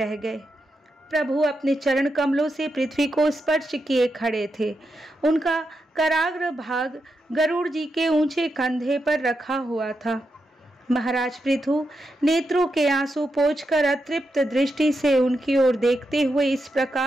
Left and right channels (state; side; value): normal; both; correlation 0.86